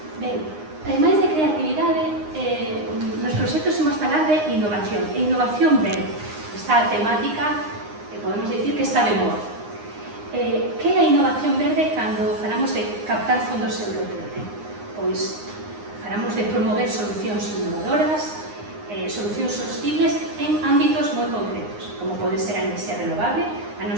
Ben, ademais de creatividade, nos proxectos imos falar de innovación, e innovación verde. Esta temática, podemos dicir que está de moda. Que é a innovación verde cando falamos de captar fondos europeos? Pois falamos de promover solucións innovadoras, solucións sostibles en ámbitos moi concretos, como pode ser a enerxía renovable. A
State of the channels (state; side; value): late; left; 9.7 ms